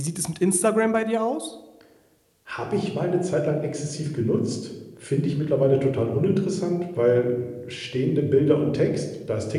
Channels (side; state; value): both; identical; correlation 1.00